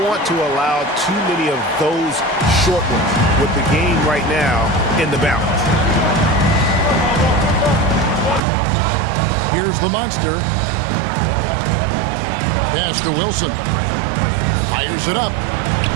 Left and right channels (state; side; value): drops out; left; at 8.4 s